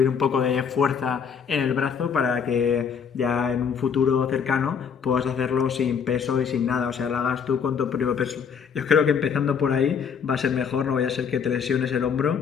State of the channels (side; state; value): right; quieter; 6.8 dB